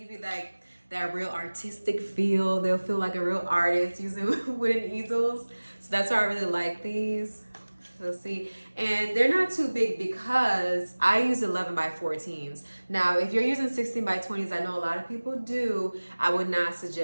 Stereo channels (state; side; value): inverted; both; correlation -1.00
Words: you that real artistic feel. They'll feel like a real artist using wooden easels. So that's why I really like these. So see, and they're not too big because I use 11 by 14s. Now, if you're using 16 by 20s, I know a lot of people do. I would not